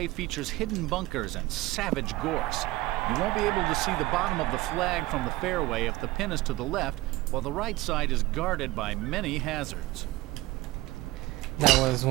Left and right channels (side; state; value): left; quieter; 18.8 dB